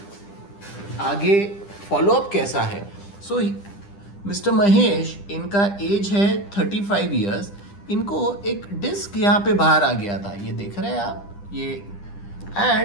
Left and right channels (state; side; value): late; right; 10 ms